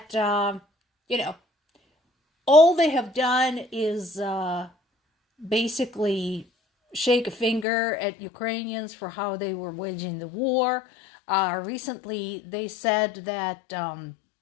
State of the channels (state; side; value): drops out; right; at 7.7 s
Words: you know, all they have done is basically shake a finger at Ukrainians for how they were waging the war. Recently, they said that